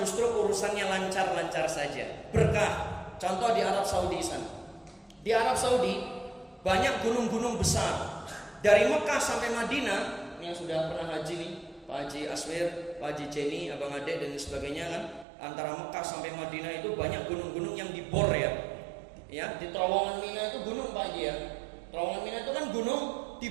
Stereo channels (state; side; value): drops out; left; at 15.2 s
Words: urusannya lancar-lancar saja, berkah. Contoh di Arab Saudi sana. Di Arab Saudi banyak gunung-gunung besar. Dari Mekah sampai Madinah, yang sudah pernah haji nih, Pak Haji Aswir, Pak Haji Jenny, Abang Ade dan sebagainya kan, antara Mekah sampai Madinah itu banyak gunung-gunung yang dibor, ya. Ya, di Terowongan Mina itu gunung Pak Haji, ya. Terowongan Mina itu kan gunung